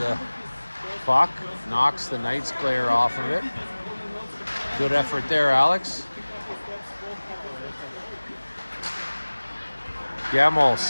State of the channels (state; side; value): inverted; both; correlation -1.00